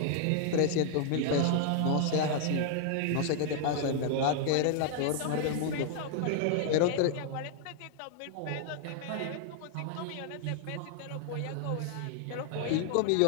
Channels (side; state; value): both; different; correlation 0.00